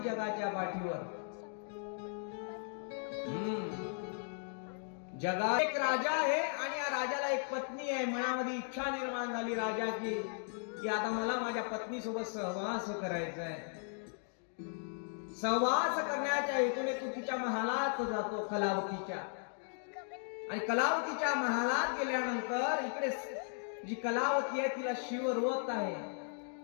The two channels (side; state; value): right; silent; 53 dB below the other